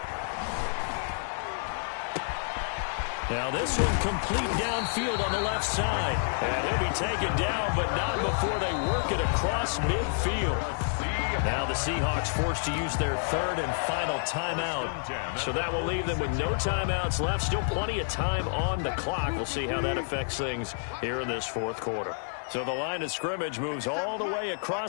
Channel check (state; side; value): silent; right; digital silence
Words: Now this one complete downfield on the left side. And he'll be taken down, but not before they work it across midfield. Now the Seahawks forced to use their 3rd and final timeout. So that will leave them with no timeouts left. Still plenty of time on the clock. We'll see how that affects things here in this 4th quarter. So the line of scrimmage moves all the way